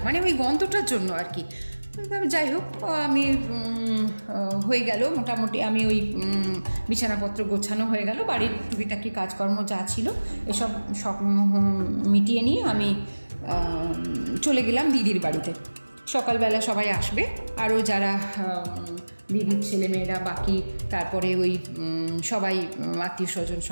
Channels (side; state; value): both; inverted; correlation -1.00